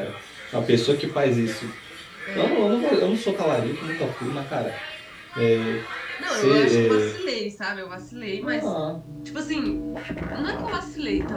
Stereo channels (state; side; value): identical; both; correlation 1.00